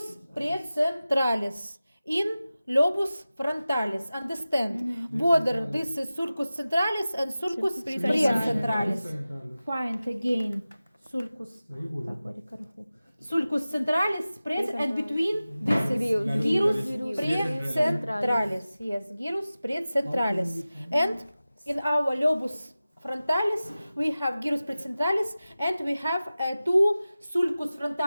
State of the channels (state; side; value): inverted; both; correlation -0.96